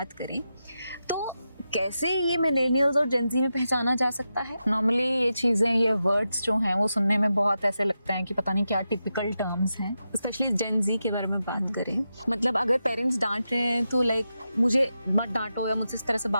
करें तो कैसे ये मिलेनियल्स और जेनजी में पहचाना जा सकता है? नॉर्मली ये चीज़ें, ये वर्ड्स जो हैं वो सुनने में बहुत ऐसे लगता है कि पता नहीं क्या टिपिकल टर्म्स हैं। स्पेशली जेनजी के बारे में बात करें, मतलब अगर पेरेंट्स डांट रहे हैं तो लाइक मुझे मत डांटो या मुझसे इस तरह से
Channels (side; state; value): both; inverted; correlation -0.88